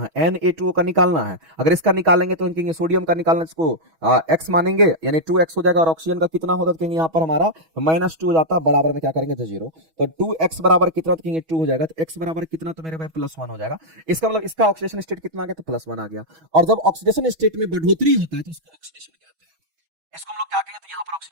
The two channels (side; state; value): left; late; 6.2 ms